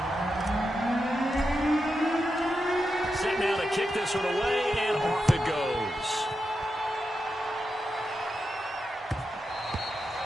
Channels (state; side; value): normal; both; correlation 0.88